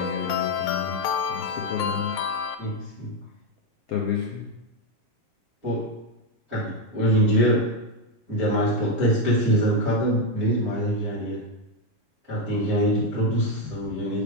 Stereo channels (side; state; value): left; late; 7.3 ms